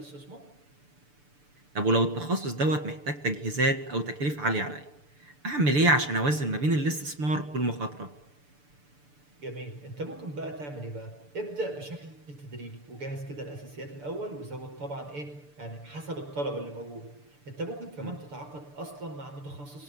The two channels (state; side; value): late; left; 6.8 ms